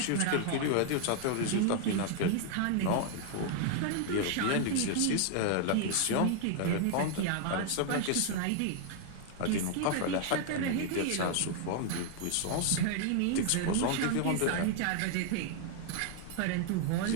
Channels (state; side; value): different; both; correlation 0.00